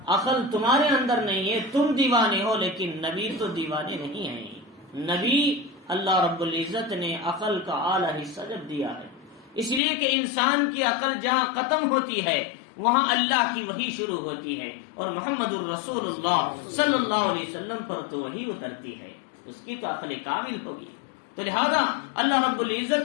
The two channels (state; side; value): drops out; right; at 9.8 s